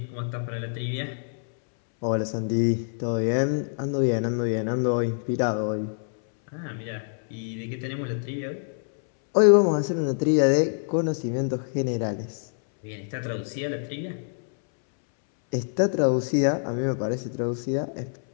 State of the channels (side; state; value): right; silent; 61 dB below the other